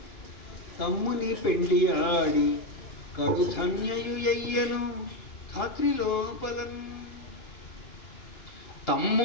తమ్ముని పెండి ఆడి కడు ధన్యయుయ్యను ధాత్రి లోపలన్.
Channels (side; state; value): right; late; 2.8 ms